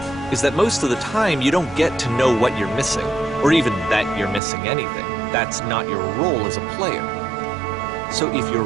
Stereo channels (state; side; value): drops out; left; at 4.4 s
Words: is that most of the time you don't get to know what you're missing, or even that you're missing anything. That's not your role as a player. So if your